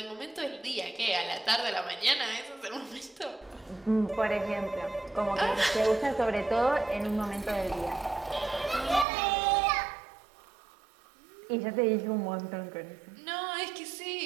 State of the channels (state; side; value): drops out; left; at 9.1 s